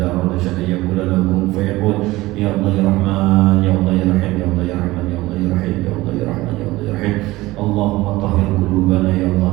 arada syai'an yaqulu lahu kun fayakun. Ya Allah ya Rahman, ya Allah ya Rahim, ya Allah ya Rahman, ya Allah ya Rahim, ya Allah ya Rahman, ya Allah ya Rahim. Allahumma tahhir qulubana ya Allah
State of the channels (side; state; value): left; quieter; 18.9 dB